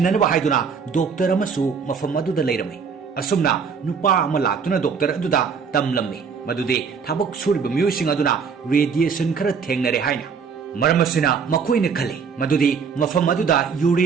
ꯍꯥꯏꯗꯨꯅ ꯗꯣꯛꯇꯔ ꯑꯃꯁꯨ ꯃꯐꯝ ꯑꯗꯨꯗ ꯂꯩꯔꯝꯃꯤ꯫ ꯑꯁꯨꯝꯅ ꯅꯨꯄꯥ ꯑꯃ ꯂꯥꯛꯇꯨꯅ ꯗꯣꯛꯇꯔ ꯑꯗꯨꯗ ꯇꯝꯂꯝꯃꯤ ꯃꯗꯨꯗꯤ ꯊꯕꯛ ꯁꯨꯔꯤꯕ ꯃꯤꯑꯣꯏꯁꯤꯡ ꯑꯗꯨꯅ ꯔꯦꯗꯤꯌꯦꯁꯟ ꯈꯔ ꯊꯦꯡꯅꯔꯦ ꯍꯥꯏꯅ꯫ ꯃꯔꯝ ꯑꯁꯤꯅ ꯃꯈꯣꯏꯅ ꯈꯜꯂꯤ ꯃꯗꯨꯗꯤ ꯃꯐꯝ ꯑꯗꯨꯗ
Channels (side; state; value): left; quieter; 6.0 dB